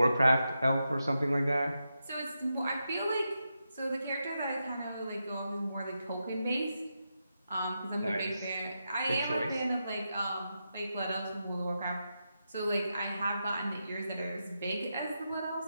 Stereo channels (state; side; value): inverted; both; correlation -0.87